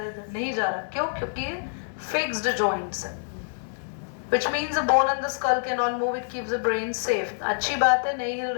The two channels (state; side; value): silent; right; digital silence